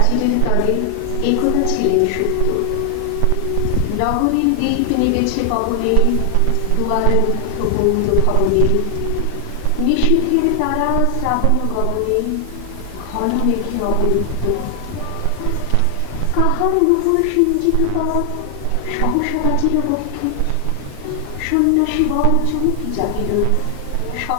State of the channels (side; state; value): both; different; correlation 0.00